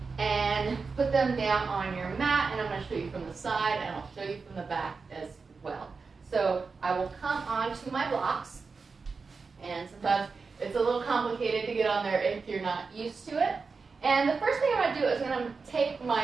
and put them down on your mat, and I'm going to show you from the side and I'll show you from the back as well. So I will come onto my blocks, and sometimes it's a little complicated to get on there if you're not used to it. And the first thing I'm going to do is I'm going to take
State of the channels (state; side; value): quieter; left; 4.7 dB